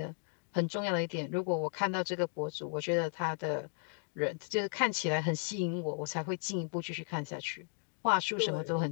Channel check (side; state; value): right; silent; 54 dB below the other